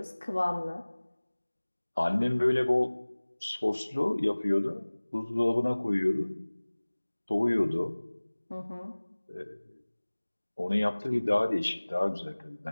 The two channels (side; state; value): both; inverted; correlation -1.00